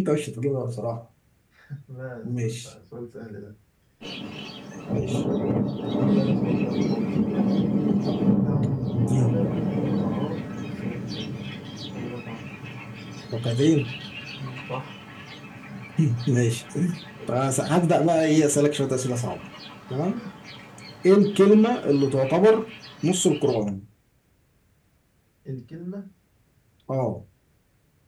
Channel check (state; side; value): identical; both; correlation 1.00